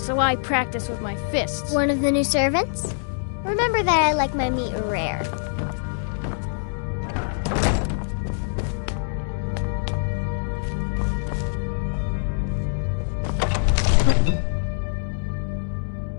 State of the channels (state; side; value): silent; right; 62 dB below the other